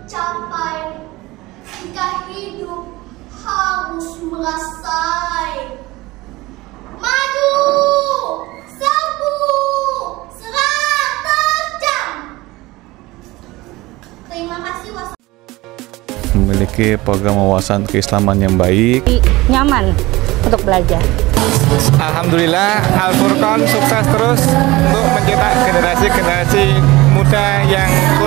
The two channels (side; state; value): left; quieter; 20.1 dB